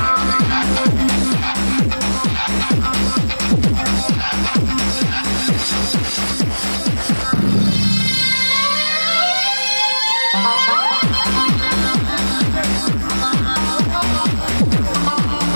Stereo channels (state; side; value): inverted; both; correlation -1.00